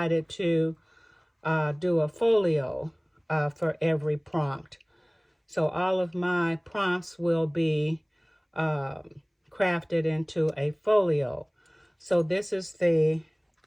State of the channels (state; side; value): identical; both; correlation 1.00